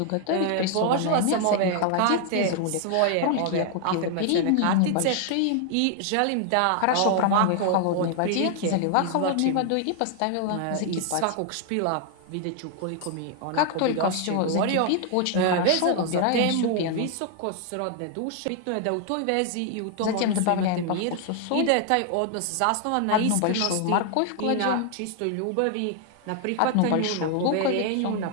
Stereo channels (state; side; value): different; both; correlation 0.00